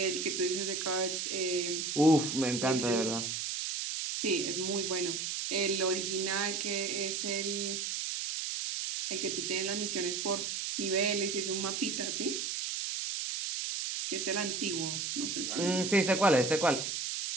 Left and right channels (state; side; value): noise; right; hiss, 2 dB below the sound